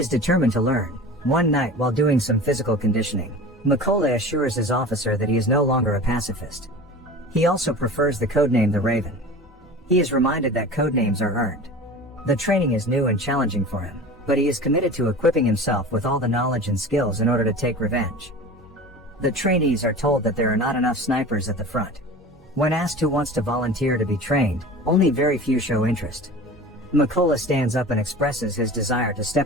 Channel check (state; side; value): normal; both; correlation 0.36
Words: determined to learn. One night while doing some physical conditioning, Mykola assures his officer that he is no longer a pacifist. He also prefers the codename the Raven. He is reminded that codenames are earned. The training is new and challenging for him, but he is committed to equipping himself with all the knowledge and skills in order to take revenge. The trainees are told that there are not enough snipers at the front. When asked who wants to volunteer to be trained, only very few show interest. Mykola stands up and expresses his desire to